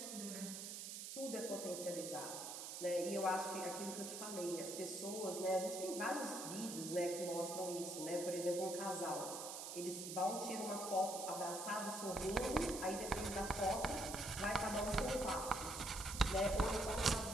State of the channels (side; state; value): right; noise; hiss, 7 dB below the sound